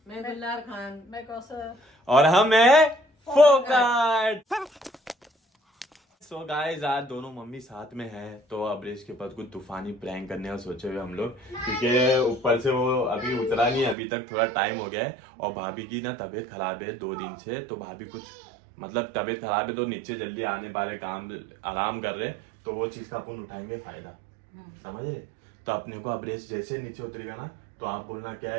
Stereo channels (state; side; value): drops out; left; at 14.0 s